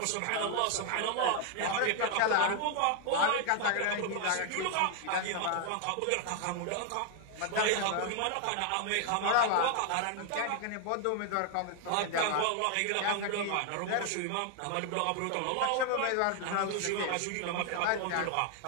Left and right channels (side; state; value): both; different; correlation 0.00